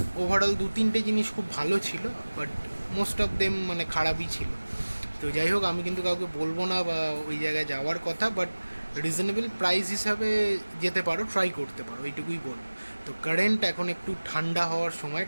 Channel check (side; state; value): both; inverted; correlation -1.00